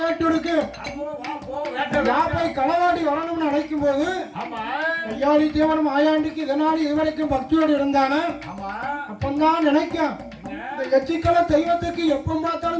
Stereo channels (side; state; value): both; identical; correlation 1.00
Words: இருக்கு. போய் களவாடி வரணும்னு நினைக்கும் போது ஐயாடி தேவன் மாயாண்டிக்கு இதனால இதுவரைக்கும் பக்தியோடு இருந்தானே அப்பந்தான் நினைக்கும் இந்த எச்சிக்கல தெய்வத்துக்கு எப்ப